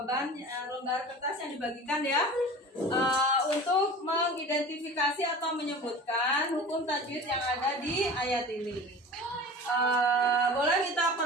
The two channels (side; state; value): both; normal; correlation 0.38